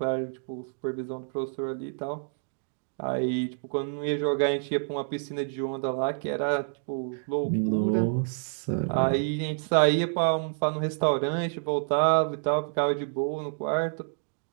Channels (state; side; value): silent; left; digital silence